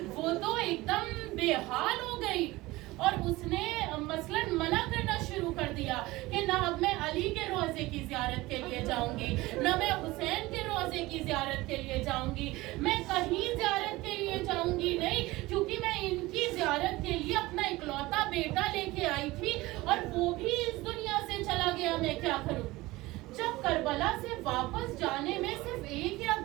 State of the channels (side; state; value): left; quieter; 19.8 dB